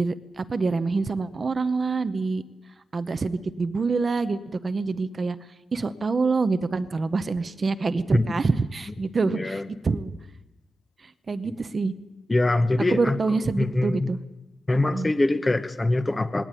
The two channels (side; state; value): both; normal; correlation 0.93